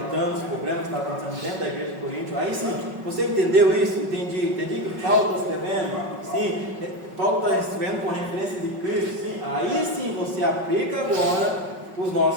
os problemas que estavam acontecendo dentro da igreja de Corinto. Aí sim, você entendeu isso? Entendi que Paulo está escrevendo? Sim, Paulo está escrevendo com referência de Cristo. Sim, aí sim você aplica agora os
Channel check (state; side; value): late; left; 5.4 ms